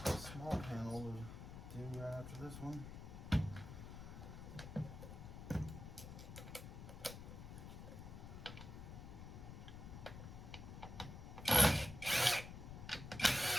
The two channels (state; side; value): noise; left; rumble, 10 dB below the sound